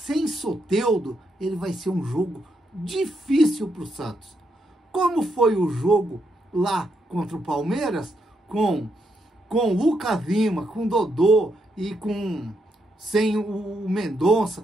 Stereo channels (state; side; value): normal; both; correlation 0.79